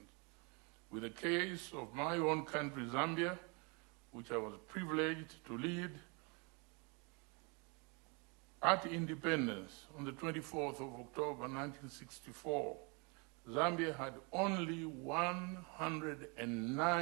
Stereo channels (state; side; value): quieter; left; 31.9 dB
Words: with the case of my own country, Zambia, which I was privileged to lead. At independence, on the 24th of October 1964, Zambia had only